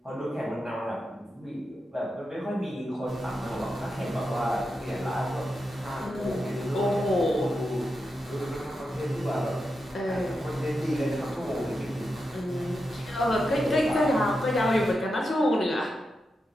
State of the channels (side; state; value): both; normal; correlation 0.88